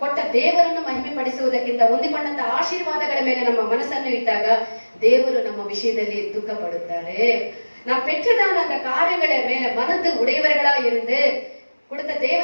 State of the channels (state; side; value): inverted; both; correlation -1.00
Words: ಕೊಟ್ಟ ದೇವರನ್ನು ಮಹಿಮೆ ಪಡಿಸುವುದಕ್ಕಿಂತ ಹೊಂದಿಕೊಂಡಂತ ಆಶೀರ್ವಾದಗಳ ಮೇಲೆ ನಮ್ಮ ಮನಸ್ಸನ್ನು ಇಟ್ಟಾಗ ದೇವರು ನಮ್ಮ ವಿಷಯದಲ್ಲಿ ದುಃಖ ಪಡುತ್ತಾರೆ. நாம் பெற்றதான அந்த காரியங்களை மேல மனது உடையவர்களா இருந்து கொடுத்த